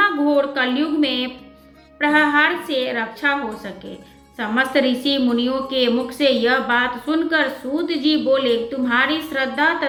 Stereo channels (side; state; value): both; identical; correlation 1.00